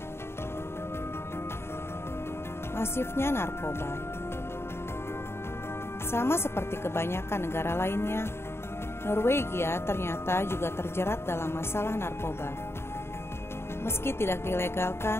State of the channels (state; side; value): late; right; 0.12 ms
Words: Masifnya narkoba. Sama seperti kebanyakan negara lainnya, Norwegia ternyata juga terjerat dalam masalah narkoba. Meski tidak